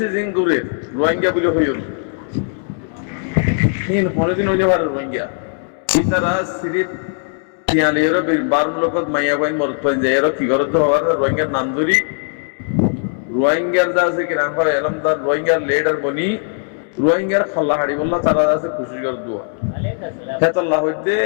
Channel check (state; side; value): silent; right; 67 dB below the other